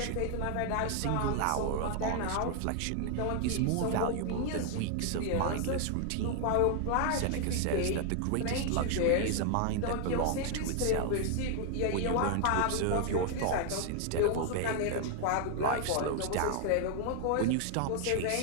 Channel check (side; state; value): both; different; correlation 0.00